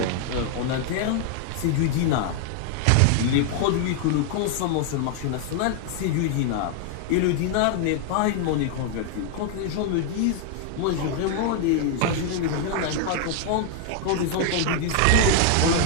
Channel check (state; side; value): different; both; correlation 0.00